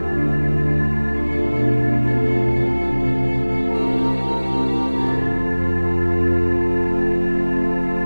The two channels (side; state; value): both; inverted; correlation -1.00